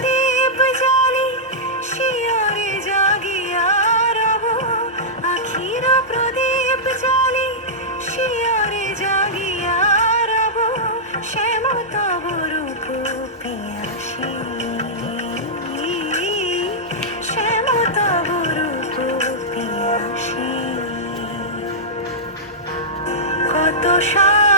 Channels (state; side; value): normal; both; correlation -0.12